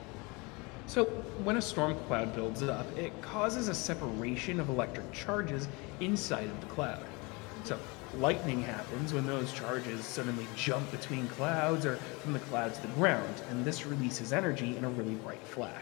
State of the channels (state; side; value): quieter; right; 27.2 dB